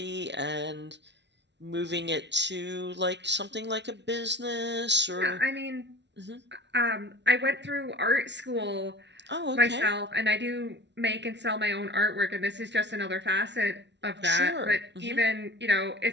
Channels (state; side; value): late; left; 0.51 ms